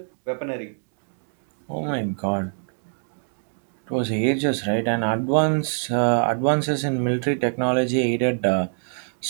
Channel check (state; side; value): silent; left; 62 dB below the other